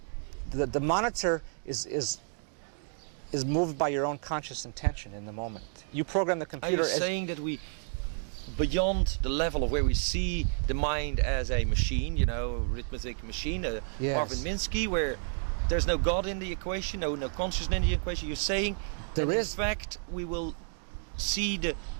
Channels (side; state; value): left; silent; 57 dB below the other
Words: The monitor is moved by your own conscious intention in the moment. You program the computer. Are you saying that we, beyond the level of where we see the mind as a machine, arithmetic machine, yes. Marvin Minsky, where there's no God in the equation, no consciousness in the equation? You're saying there is. In fact, we will see the